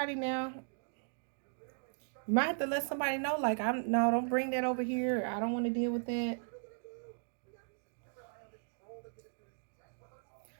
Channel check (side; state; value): left; silent; 53 dB below the other